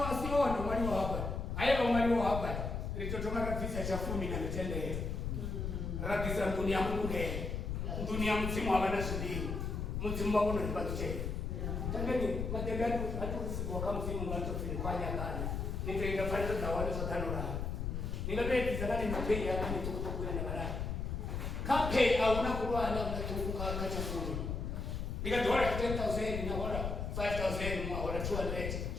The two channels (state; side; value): noise; left; rumble, 3 dB below the sound